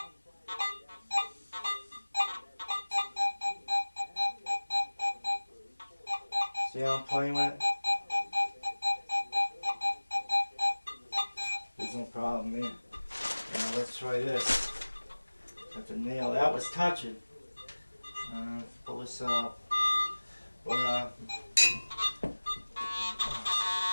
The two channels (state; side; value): inverted; both; correlation -1.00